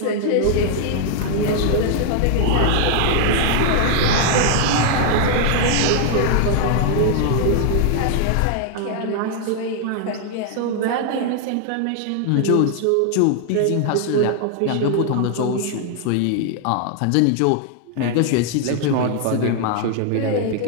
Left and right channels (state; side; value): different; both; correlation 0.00